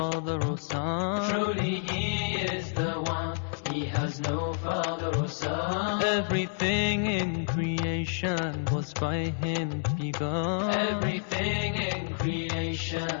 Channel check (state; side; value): silent; right; digital silence